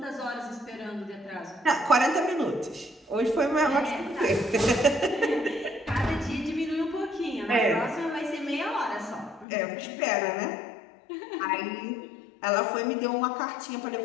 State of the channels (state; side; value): drops out; right; at 9.5 s